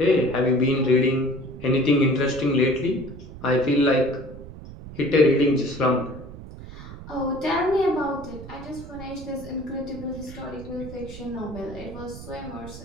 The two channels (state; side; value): noise; right; rumble, 14 dB below the sound